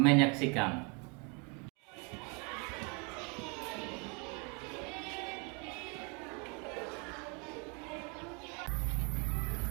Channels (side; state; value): left; quieter; 33.8 dB